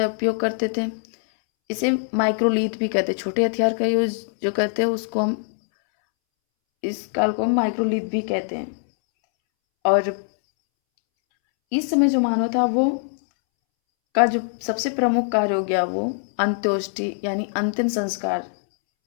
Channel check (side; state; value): right; silent; 64 dB below the other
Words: उपयोग करते थे। इसे माइक्रोलीथ भी कहते हैं। छोटे हथियार का यूज जो करते हैं उसको हम, इस काल को हम माइक्रोलीथ भी कहते हैं। और इस समय जो मानव था वो का जो सबसे प्रमुख कार्य हो गया वो अंत्योष्टि यानी अंतिम संस्कार